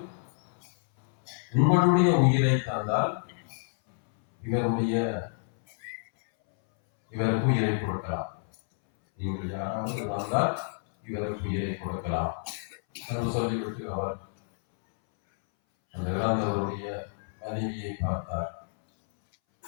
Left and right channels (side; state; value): right; silent; 59 dB below the other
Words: உங்களுடைய உயிரை தந்தால் இவருக்கு உயிரை கொடுக்கலாம். நீங்கள் யாராவது வந்தால் இவருக்கு உயிரை கொடுக்கலாம் என்று சொல்லிவிட்டு அவர் அந்த இறந்தவருடைய மனைவியை பார்த்தார்.